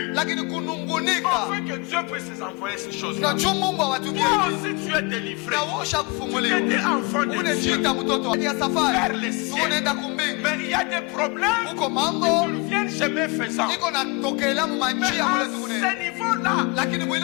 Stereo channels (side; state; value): right; quieter; 28.8 dB